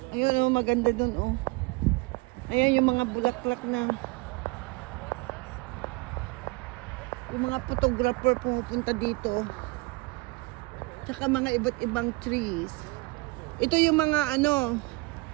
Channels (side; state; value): left; quieter; 24.7 dB